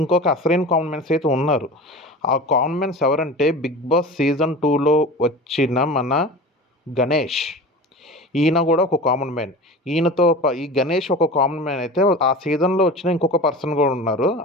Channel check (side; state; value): both; normal; correlation 0.34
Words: ఇంకొక అసలైన కామన్ మ్యాన్స్ అయితే ఉన్నారు. ఆ కామన్ మ్యాన్స్ ఎవరంటే బిగ్ బాస్ సీజన్ 2లో వచ్చిన మన గణేష్. ఈయన కూడా ఒక కామన్ మ్యాన్. ఈ గణేష్ ఒక కామన్ మ్యాన్ అయితే, ఆ సీజన్లో వచ్చిన ఇంకొక పర్సన్ కూడా ఉన్నారు,